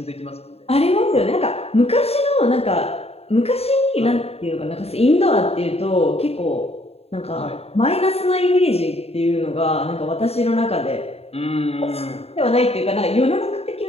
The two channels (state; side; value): late; right; 0.29 ms